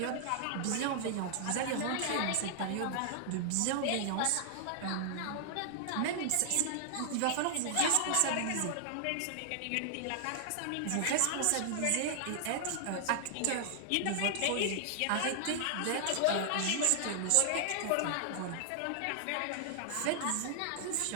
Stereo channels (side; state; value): both; different; correlation 0.00